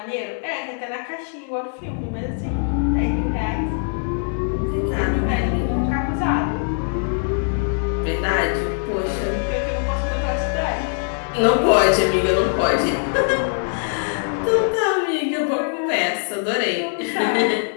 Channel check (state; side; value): silent; right; digital silence